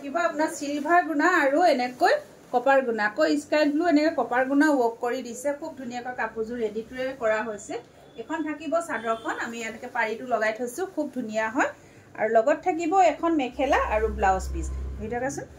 আপোনাৰ সিলভাৰ গুণা আৰু এনেকৈ কপাৰ গুণা কো স্কাই ব্লু এনেকৈ কপাৰ গুণা ওয়াৰ্ক কৰি দিছে খুব ধুনিয়াকৈ কাপোৰজোৰ ৰেডি টু কৰা হৈছে এখন থাকিব চাদৰখন আমি এনেকৈ পাৰিটো লগাই থৈছো খুব ধুনিয়া হয় আৰু লগত থাকিব এখন মেখেলা আৰু ব্লাউজ পিস ভিডিওটা আছে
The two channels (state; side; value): identical; both; correlation 1.00